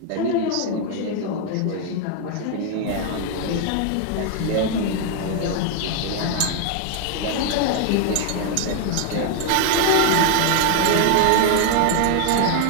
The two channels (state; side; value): different; both; correlation 0.00